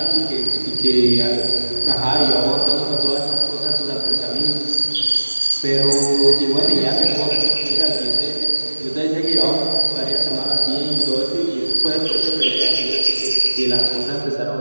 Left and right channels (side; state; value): both; inverted; correlation -1.00